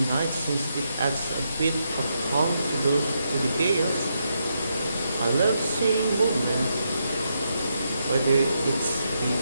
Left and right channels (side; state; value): both; inverted; correlation -0.81